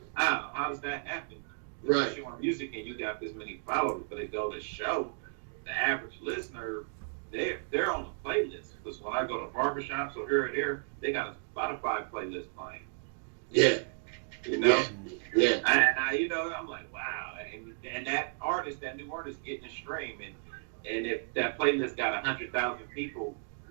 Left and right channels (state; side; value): silent; left; digital silence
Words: wow, how does that happen? Right. You're on music and you got this many followers, but it go to show the average listener, they're on the playlist. Because when I go to barbershops or here or there, they got a Spotify playlist playing. Yeah. You know? Yeah. And I, you know, I'm like, wow. And that artist, that new artist getting a stream. And if that playlist got 100,000 people